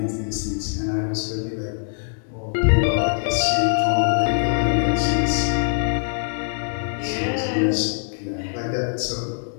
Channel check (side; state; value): right; silent; digital silence